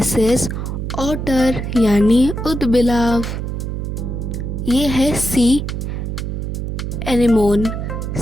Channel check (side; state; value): right; noise; hum, 4 dB below the sound